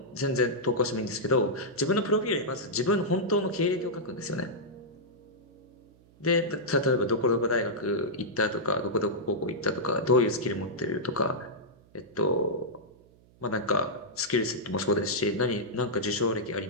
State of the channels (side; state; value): right; noise; hum, 28 dB below the sound